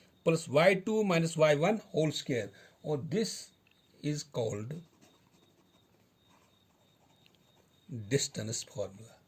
plus y2 minus y1 whole square, or this is called distance formula.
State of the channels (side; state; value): both; identical; correlation 1.00